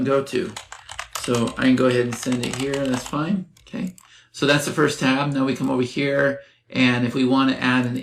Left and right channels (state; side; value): identical; both; correlation 1.00